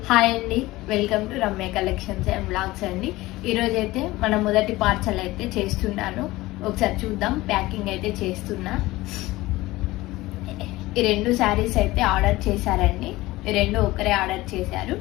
Hi అండి, welcome to Ramya collections and blogs అండి. ఈరోజైతే మన మొదటి పార్సల్ అయితే చేస్తున్నాను. ఒకసారి చూద్దాం. ప్యాకింగ్ అయితే చేస్తున్నా. ఈ రెండు శారీస్ అయితే ఆర్డర్ చేశారండి. ఈ రెండు ఒకరే ఆర్డర్ చేశారు.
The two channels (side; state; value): right; quieter; 18.9 dB